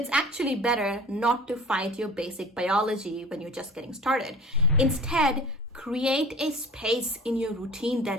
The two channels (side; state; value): both; normal; correlation 0.40